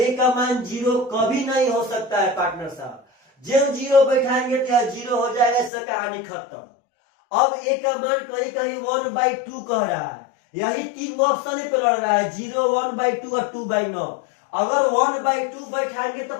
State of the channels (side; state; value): right; drops out; at 5.7 s